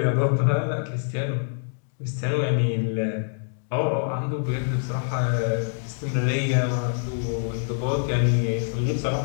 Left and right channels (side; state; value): right; silent; digital silence